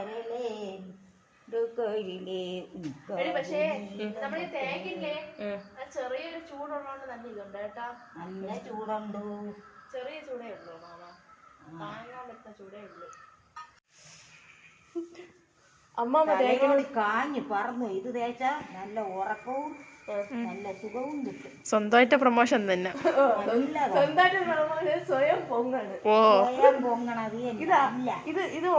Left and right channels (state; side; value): identical; both; correlation 1.00